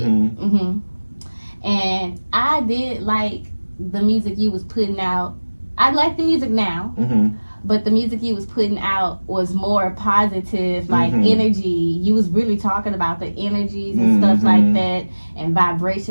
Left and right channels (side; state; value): both; inverted; correlation -1.00